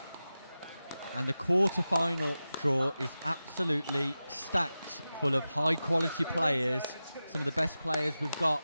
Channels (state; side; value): inverted; both; correlation -0.94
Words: And the quarter-final draw is absolutely stacked full of high-quality players, some of the best players we've